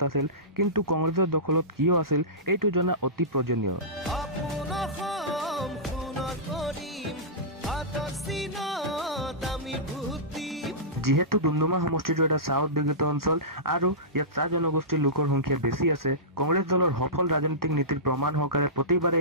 আছিল। কিন্তু কংগ্ৰেছৰ দখলত কিয় আছিল এইটো জনা অতি প্ৰয়োজনীয়। যিহেতু ডুমডুমা সমষ্টিটো এটা চাহ উদ্যোগিত অঞ্চল আৰু ইয়াত চাহ জনগোষ্ঠীৰ লোকৰ সংখ্যা বেছি আছে, কংগ্ৰেছ দলৰ সফল ৰাজনৈতিক নীতিৰ প্ৰমাণ সহকাৰে প্ৰতিবাৰে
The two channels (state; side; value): normal; both; correlation -0.19